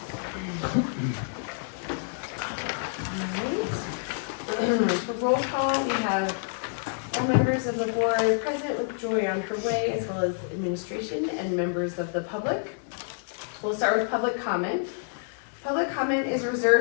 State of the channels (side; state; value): right; silent; digital silence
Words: Alright. For roll call, we have all members of the board present with Joy on her way, as well as administration and members of the public. We'll start with public comment. Public comment is